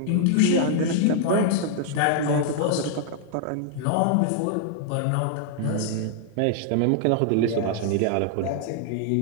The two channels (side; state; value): both; different; correlation 0.00